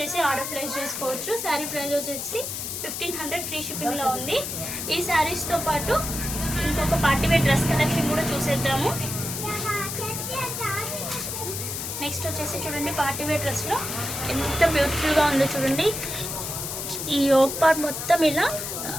ఆర్డర్ ప్లేస్ చేసుకోవచ్చు. శారీ ప్రైస్ వచ్చేసి 1500 ఫ్రీ షిప్పింగ్లో ఉంది. ఈ శారీస్తో పాటు ఇంకొక పార్టీవేర్ డ్రెస్ కలెక్షన్ కూడా చూసేద్దాము. నెక్స్ట్ వచ్చేసి చూడండి పార్టీవేర్ డ్రెస్లో ఎంత బ్యూటిఫుల్గా ఉందో చూడండి. ఈ యోక్ పార్ట్ మొత్తం ఇలా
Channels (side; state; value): left; noise; hiss, 5 dB below the sound